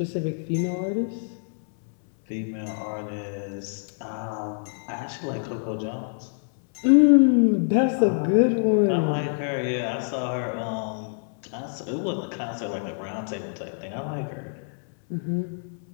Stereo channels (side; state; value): right; silent; 61 dB below the other